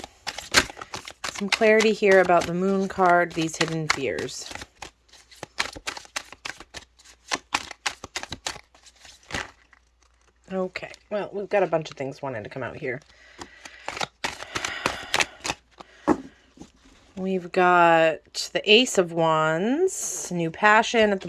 Some clarity here about the Moon card, these hidden fears. Okay, well, we've got a bunch of things wanting to come out here. We've got the Ace of Wands, new passion at the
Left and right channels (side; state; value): both; identical; correlation 1.00